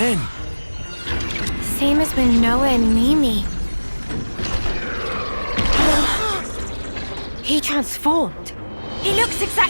Same as when Noah and Mimi. He transformed. He looks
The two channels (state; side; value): inverted; both; correlation -1.00